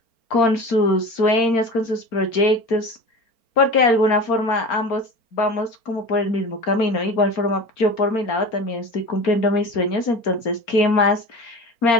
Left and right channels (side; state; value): right; late; 4.4 ms